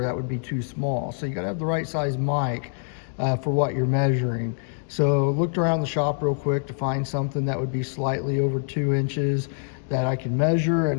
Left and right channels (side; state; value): right; silent; 62 dB below the other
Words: that would be too small. So you got to have the right size mic for what you're measuring. So looked around the shop real quick to find something that would be slightly over 2 inches that I can measure,